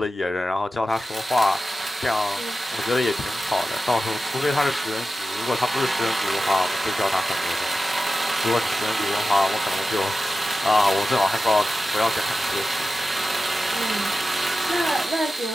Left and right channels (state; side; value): normal; both; correlation 0.93